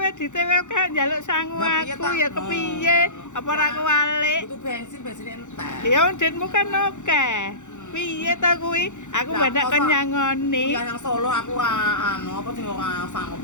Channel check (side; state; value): right; late; 0.85 ms